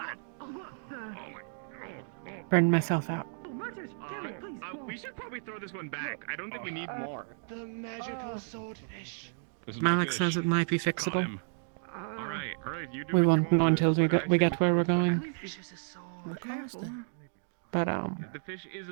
Burned myself out. We should probably throw this one back. I don't think we need more. The magical swordfish. Malik says it might be fixable. Alright, you do We what you won't know want. until we get where we're going. But The fish is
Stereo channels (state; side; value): silent; left; digital silence